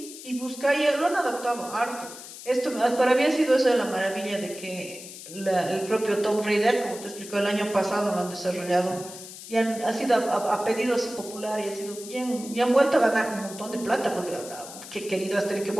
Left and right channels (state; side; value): noise; left; hiss, 13 dB below the sound